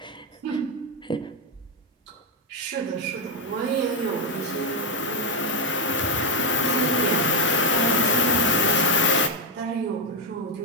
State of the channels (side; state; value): both; normal; correlation 0.04